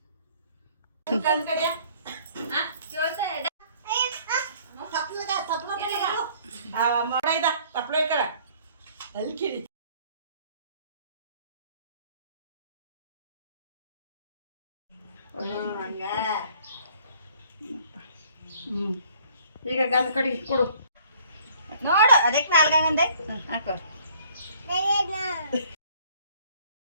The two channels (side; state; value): both; inverted; correlation -0.57